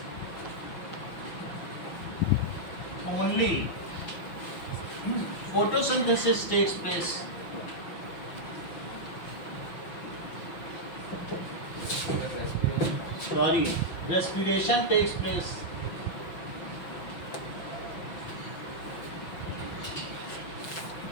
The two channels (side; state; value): right; late; 5.7 ms